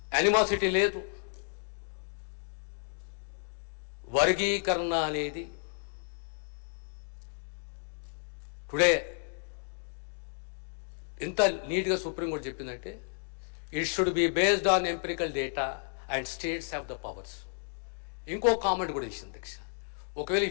యానిమాసిటీ లేదు, వర్గీకరణ అనేది టుడే ఎంత నీట్గా సుప్రీంకోర్టు చెప్పిందంటే, it should be based on empirical data and states have the powers. ఇంకో కామెంట్ కూడా ఇచ్చింది అధ్యక్ష, ఒకవేళ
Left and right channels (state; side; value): silent; right; digital silence